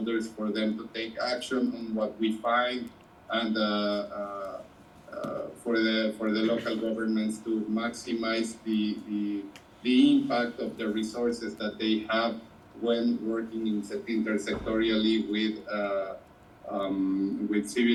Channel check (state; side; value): identical; both; correlation 1.00